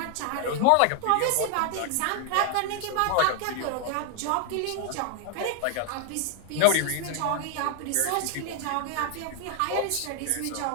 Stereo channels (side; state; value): both; different; correlation 0.00